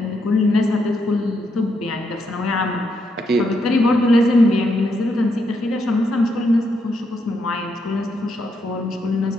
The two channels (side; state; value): both; normal; correlation 0.79